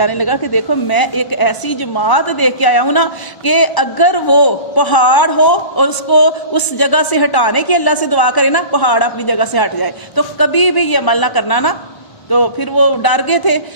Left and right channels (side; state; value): right; late; 1.1 ms